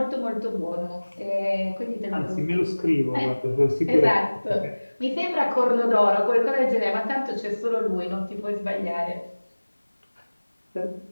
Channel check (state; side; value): inverted; both; correlation -1.00